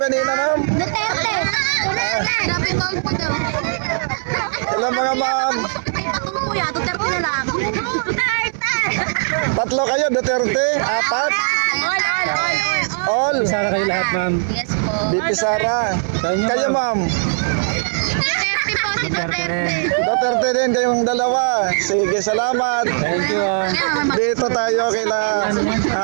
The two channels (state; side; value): silent; left; 59 dB below the other